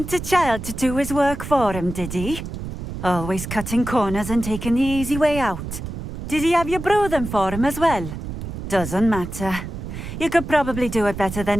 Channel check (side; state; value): right; noise; rumble, 8 dB below the sound